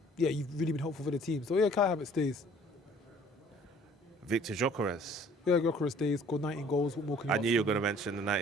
you've really been helpful for the team. So Kai Havertz stays. Victor Gyökeres. Yeah, Gyökeres stays. Scored 19 goals. What more can you I knew you were going to mention the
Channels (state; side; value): normal; both; correlation 0.54